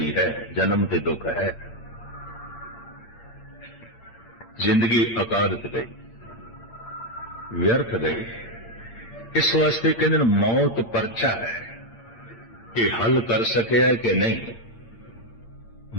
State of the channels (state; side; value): late; right; 8.7 ms